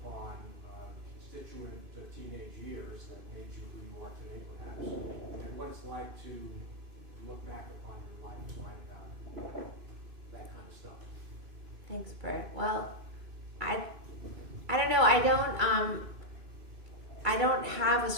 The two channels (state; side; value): late; left; 2.5 ms